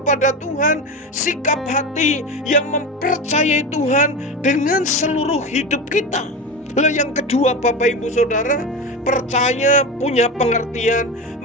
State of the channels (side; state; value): both; normal; correlation 0.23